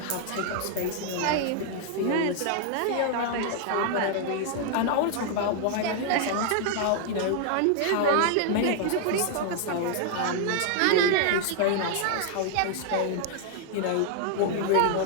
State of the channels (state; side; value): different; both; correlation 0.00